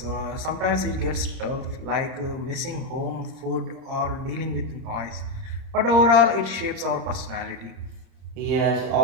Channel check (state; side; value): late; left; 30 ms